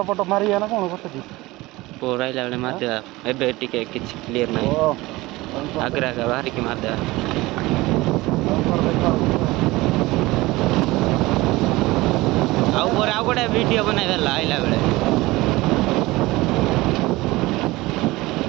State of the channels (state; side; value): quieter; left; 20.2 dB